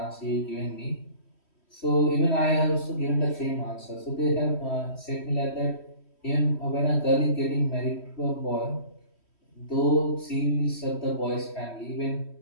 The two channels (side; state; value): right; late; 3.1 ms